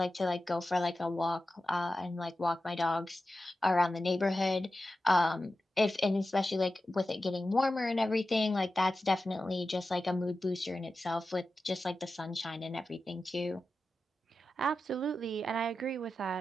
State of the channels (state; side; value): normal; both; correlation 0.93